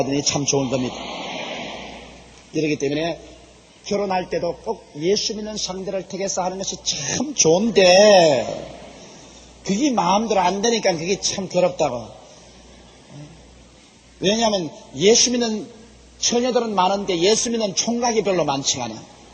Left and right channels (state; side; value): identical; both; correlation 1.00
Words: 되니 참 좋은 겁니다. 이러기 때문에 결혼할 때도 꼭 예수 믿는 상대를 택해서 하는 것이 참 좋은데 그게 마음대로 안 되니까 그게 참 괴롭다고. 왜냐하면 예수 믿는 처녀들은 많은데 예수 믿는 총각이 별로 많지가 않아.